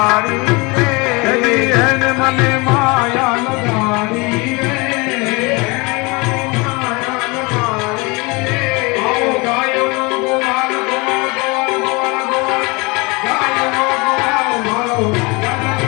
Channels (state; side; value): quieter; right; 27.0 dB